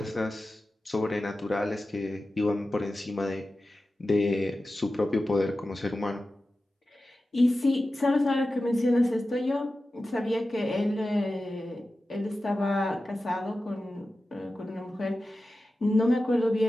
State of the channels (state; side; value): normal; both; correlation 0.94